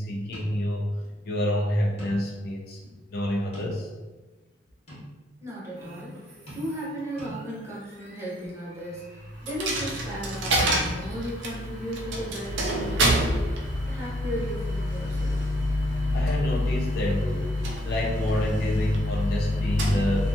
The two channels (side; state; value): both; normal; correlation 0.67